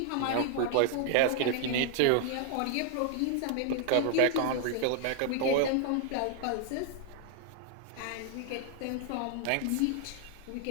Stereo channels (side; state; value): both; different; correlation 0.00